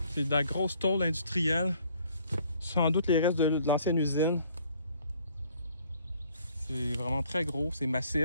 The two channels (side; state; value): both; inverted; correlation -0.60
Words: C'est de la grosse tôle industrielle. Sans doute les restes de l'ancienne usine. C'est vraiment très gros, c'est